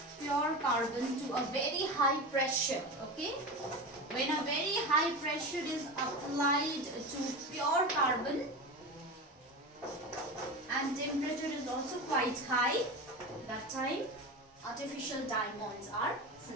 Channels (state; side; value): normal; both; correlation 0.25